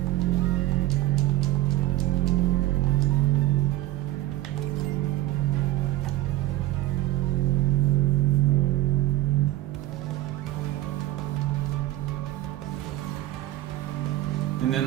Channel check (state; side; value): quieter; left; 16.2 dB